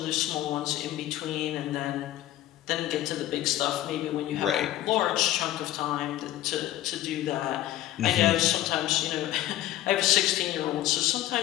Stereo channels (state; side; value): quieter; right; 14.2 dB